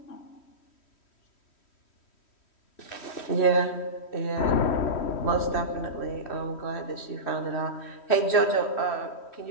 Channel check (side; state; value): right; late; 3.1 ms